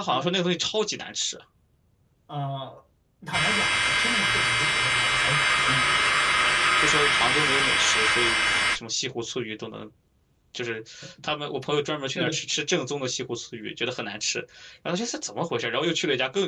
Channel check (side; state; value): both; identical; correlation 1.00